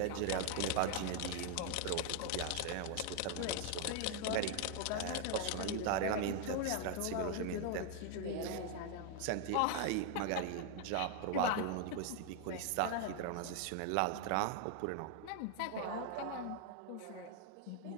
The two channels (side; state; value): both; different; correlation 0.00